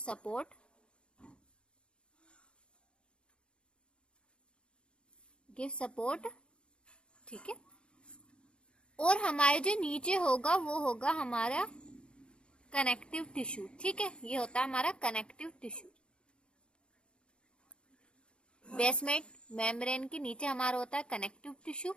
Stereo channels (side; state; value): right; late; 0.055 ms